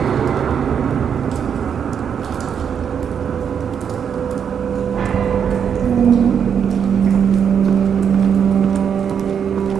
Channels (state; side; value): quieter; left; 7.6 dB